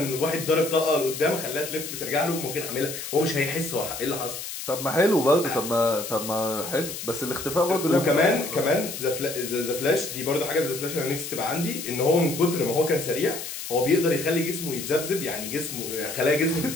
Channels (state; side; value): noise; left; hiss, 8 dB below the sound